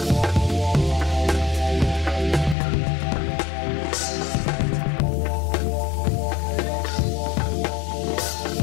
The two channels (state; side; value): drops out; right; at 2.6 s